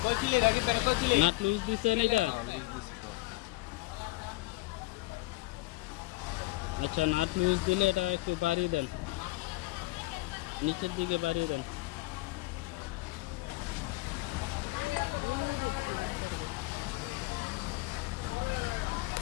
নাট লুজ দিচ্ছেন এটা। আচ্ছা, নাট লুজ দিলে এটা একটু বাড়িয়ে দেন, নিচের দিকে বাড়িয়ে দেন।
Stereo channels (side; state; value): right; quieter; 20.8 dB